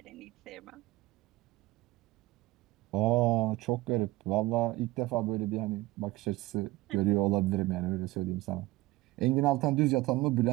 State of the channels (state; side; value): quieter; left; 19.0 dB